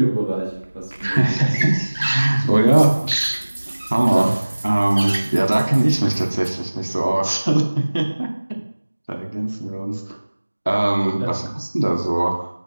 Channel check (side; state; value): both; inverted; correlation -1.00